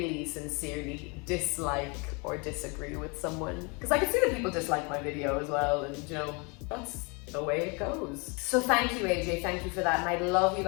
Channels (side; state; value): right; quieter; 31.0 dB